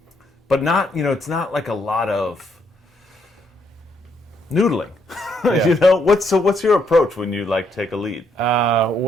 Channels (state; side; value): normal; both; correlation 0.74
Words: not, it's not like a lot of noodling. Yeah. What's your approach when you like take a lead?